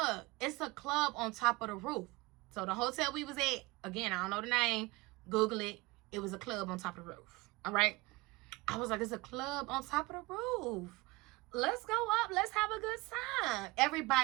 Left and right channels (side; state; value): left; quieter; 23.1 dB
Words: it's a club on top of the roof. So the hotel we was at, again, I don't know the name. Google it. It was a club on top of the roof. All right. I was like, it's a club on top of the roof. Let's go up. Let's have a good time.